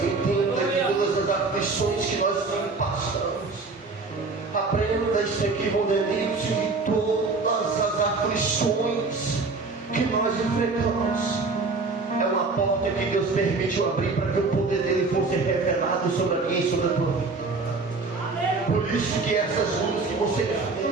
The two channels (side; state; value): left; quieter; 3.9 dB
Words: entenda que todas as aflições que nós passamos, aprenda isso aqui, Mondelito, e todas as aflições que nós enfrentamos é uma porta que Deus permitiu abrir para que o poder dele fosse revelado sobre a minha e sobre a tua vida. Por isso que essas lutas que você